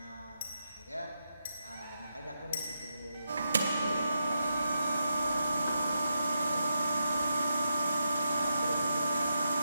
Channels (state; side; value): inverted; both; correlation -0.85